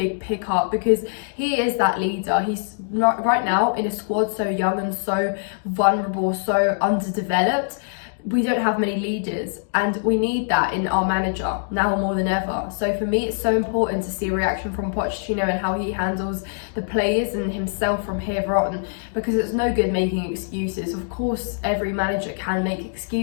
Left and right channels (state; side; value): silent; right; digital silence